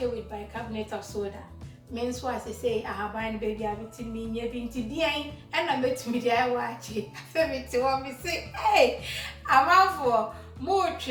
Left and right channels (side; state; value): both; identical; correlation 1.00